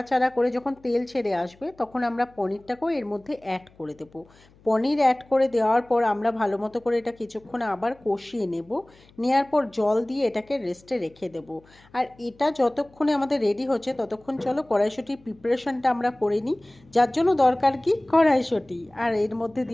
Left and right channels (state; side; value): noise; left; hum, 28 dB below the sound